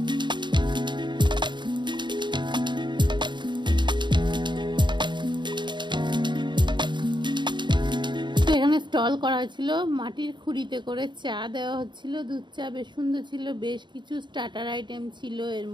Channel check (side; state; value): left; late; 0.22 ms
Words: স্টল করা হয়েছিল, মাটির খুঁড়িতে করে চা দেওয়া হচ্ছিল, দুধ চা বেশ সুন্দর ছিল। বেশ কিছু স্টার্টার আইটেম ছিল, এর